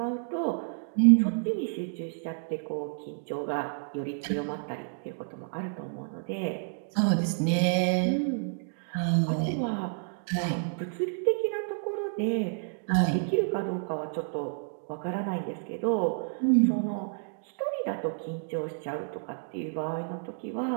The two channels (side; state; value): left; silent; digital silence